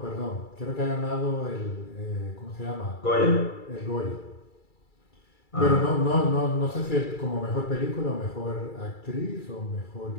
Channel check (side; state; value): right; late; 2.3 ms